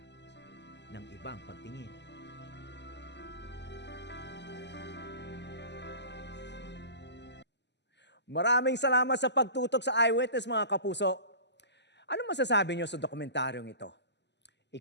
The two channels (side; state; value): right; late; 0.50 ms